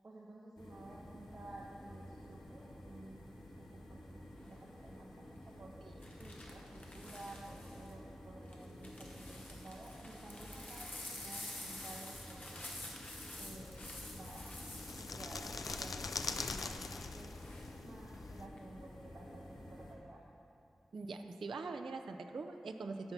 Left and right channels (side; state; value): both; normal; correlation 0.81